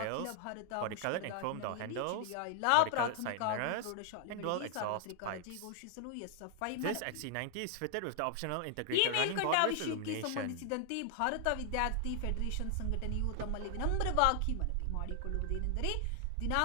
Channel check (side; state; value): both; different; correlation 0.00